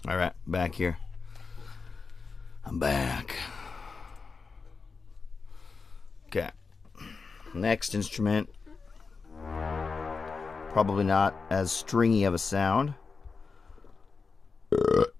All right, back here. I'm back. Okay. Next instrument. Probably not as stringy of a sound.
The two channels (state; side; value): quieter; right; 4.7 dB